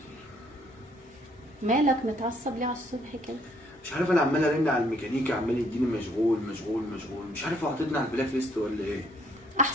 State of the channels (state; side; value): normal; both; correlation 0.66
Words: مالك متعصب ليه على الصبح كده؟ مش عارف، انا عمال ارن على الميكانيكي عمال يديني مشغول مشغول مشغول، مش عارف هو حاططني على البلاك ليست ولا ايه.